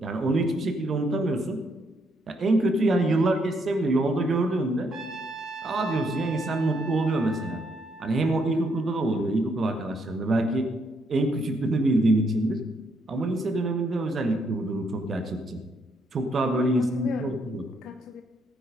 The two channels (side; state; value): both; normal; correlation 0.74